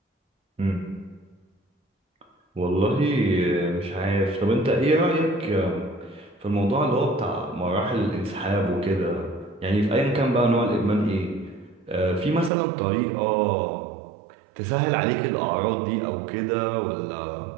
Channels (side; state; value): left; drops out; at 12.5 s